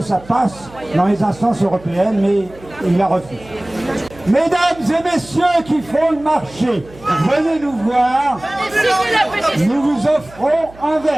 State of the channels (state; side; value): noise; right; hum, 22 dB below the sound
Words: ça passe dans les instances européennes, mais il la refuse. Mesdames et messieurs qui font le marché, venez nous voir, nous vous offrons un